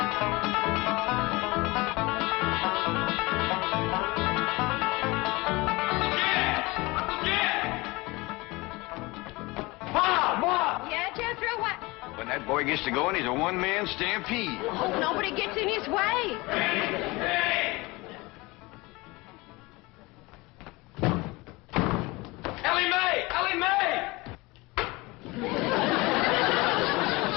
When that boy gets to going, he's a one-man stampede. Hope nobody gets in his way. Hey! Ellie Mae! Ellie Mae!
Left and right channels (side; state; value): right; quieter; 23.4 dB